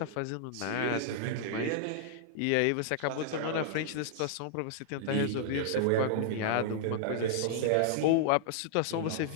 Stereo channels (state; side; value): different; both; correlation -0.01